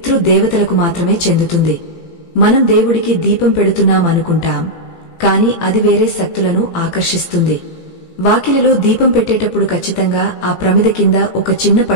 మాత్రమే చెందుతుంది. మనం దేవుడికి దీపం పెడుతున్నామనుకుంటాం, కాని అది వేరే శక్తులను ఆకర్షిస్తుంది. వాకిలిలో దీపం పెట్టేటప్పుడు ఖచ్చితంగా ఆ ప్రమిద కింద ఒక చిన్న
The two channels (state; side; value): late; right; 18 ms